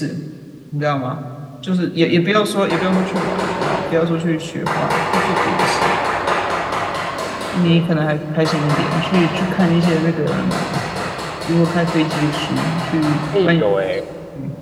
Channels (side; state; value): both; identical; correlation 1.00